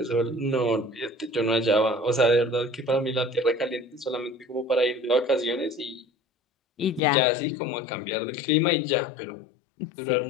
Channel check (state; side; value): drops out; right; at 7.0 s